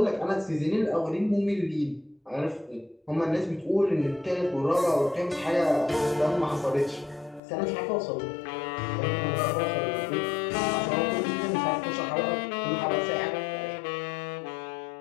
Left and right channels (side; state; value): right; drops out; at 7.4 s